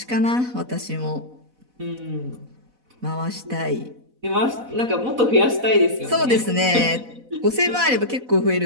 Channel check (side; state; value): left; late; 4.0 ms